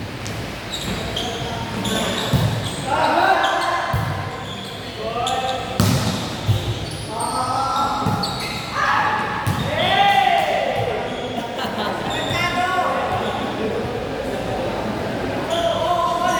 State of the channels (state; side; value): identical; both; correlation 1.00